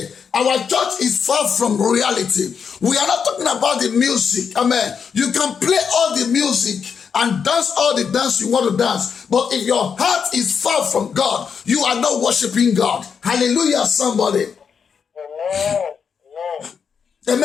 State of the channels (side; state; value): right; quieter; 6.6 dB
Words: our church is far from reality. We are not talking about the music. Amen. You can play all the music and dance all the dance you want to dance. But if your heart is far from God, you are not worshiping God. Hallelujah, somebody. Amen.